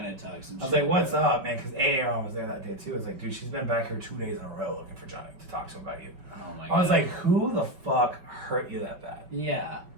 talk some I was shit, like, what's bro. up, man? Because Aaron was there that day too. I was like, dude, she's been back here 2 days in a row looking for Johnny to talk to him about you. Oh my I was God. like, who the fuck hurt you that bad? Yeah.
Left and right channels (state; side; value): late; left; 5.3 ms